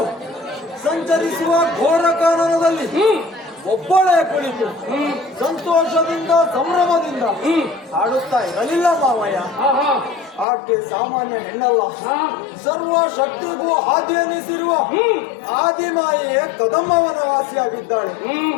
ಸಂಚರಿಸುವ ಘೋರ ಕಾನನದಲ್ಲಿ ಒಬ್ಬಳೇ ಕುಳಿತು ಸಂತೋಷದಿಂದ ಸಂಭ್ರಮದಿಂದ ಹಾಡುತ್ತಾ ಇರಲಿಲ್ಲ ಮಾವಯ್ಯ. ಆಕೆ ಸಾಮಾನ್ಯ ಹೆಣ್ಣಲ್ಲ, ಸರ್ವ ಶಕ್ತಿಗೂ ಆದಿ ಎನಿಸಿರುವ ಆದಿಮಾಯೆಯೇ ಕದಂಬವನ ವಾಸಿಯಾಗಿದ್ದಾಳೆ.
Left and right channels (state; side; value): drops out; right; at 10.5 s